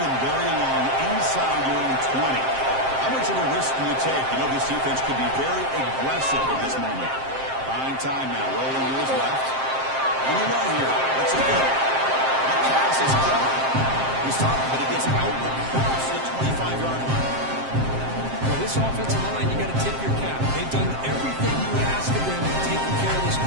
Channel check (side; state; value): left; late; 7.6 ms